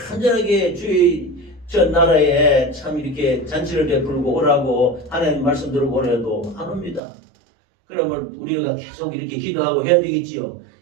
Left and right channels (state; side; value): drops out; left; at 7.0 s